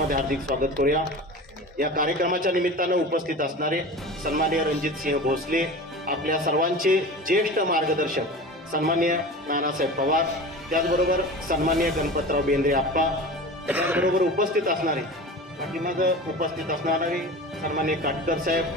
हार्दिक स्वागत करूया. या कार्यक्रमाच्या निमित्तानं उपस्थित असणारे सन्मान्य रणजितसिंह भोसले, आपल्या सर्वांचे ज्येष्ठ मार्गदर्शक सन्मान्य नानासाहेब पवार, त्याचबरोबर सन्मान्य गणपतराव बेंद्रे आप्पा, त्याचबरोबर उपस्थित असणारे पाठीमागं उपस्थित असणारे सन्मान्य काटकर साहेब,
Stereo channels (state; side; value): normal; both; correlation 0.33